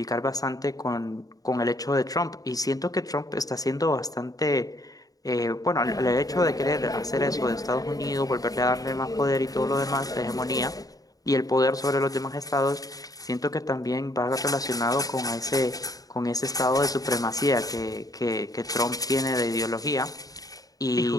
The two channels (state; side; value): late; right; 0.18 ms